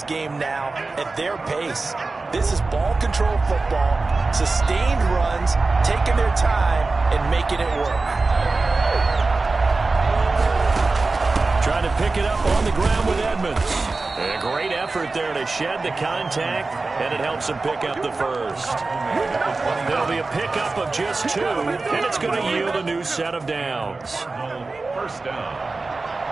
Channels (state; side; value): quieter; left; 3.6 dB